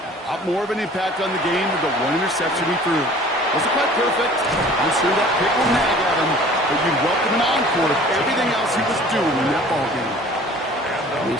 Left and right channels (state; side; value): normal; both; correlation 0.48